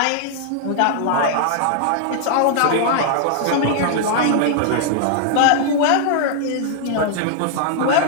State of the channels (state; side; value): different; both; correlation -0.01